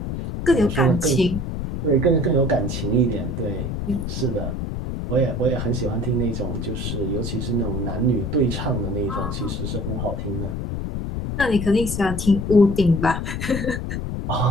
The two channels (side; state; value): left; noise; rumble, 4 dB below the sound